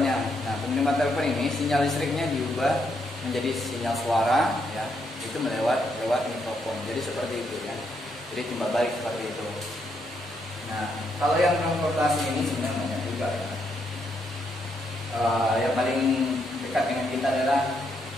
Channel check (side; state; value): both; normal; correlation 0.77